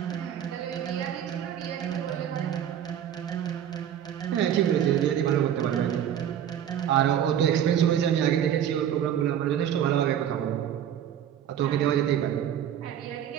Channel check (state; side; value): quieter; left; 9.9 dB